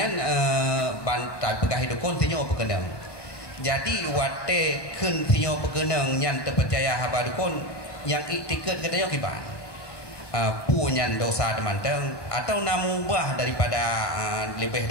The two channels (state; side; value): late; right; 1.5 ms